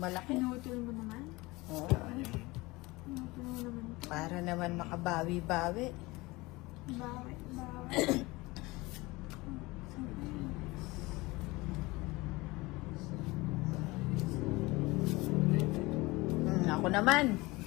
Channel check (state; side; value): quieter; right; 22.1 dB